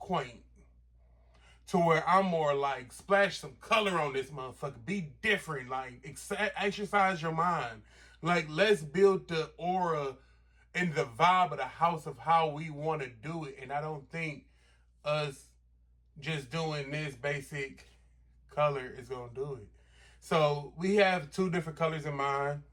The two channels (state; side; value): identical; both; correlation 1.00